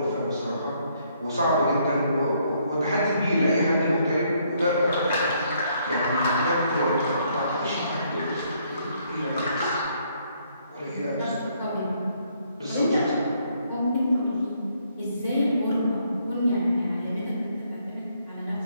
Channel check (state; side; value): inverted; both; correlation -0.70